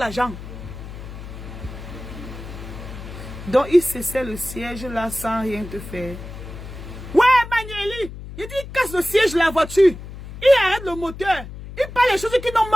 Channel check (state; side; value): noise; left; hum, 12 dB below the sound